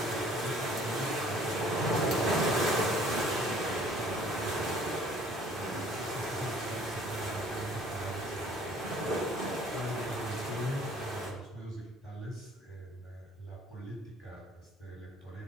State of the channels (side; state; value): both; normal; correlation 0.55